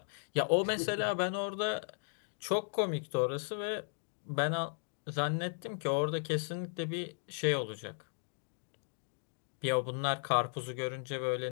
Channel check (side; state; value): right; silent; digital silence